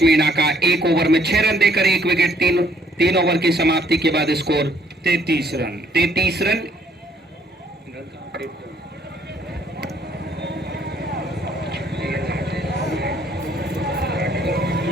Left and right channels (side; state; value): both; normal; correlation 0.65